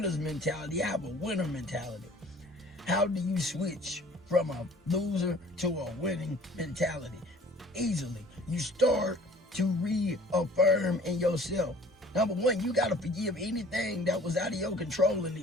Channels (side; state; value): both; normal; correlation 0.51